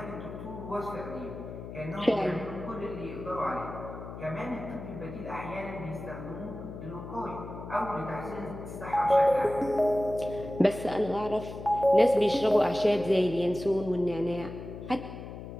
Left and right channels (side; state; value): left; noise; hum, 11 dB below the sound